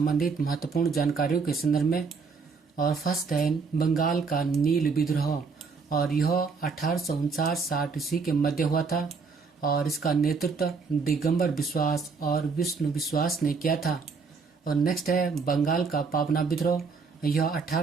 महत्वपूर्ण जानकारियों के संदर्भ में। और फर्स्ट है बंगाल का नील विद्रोह, और यह 1859-60 ईस्वी के मध्य हुआ था और इसका नेतृत्व दिगंबर विश्वास और विष्णु विश्वास ने किया था। और नेक्स्ट है बंगाल का पावना विद्रोह, यह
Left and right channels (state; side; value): quieter; left; 4.9 dB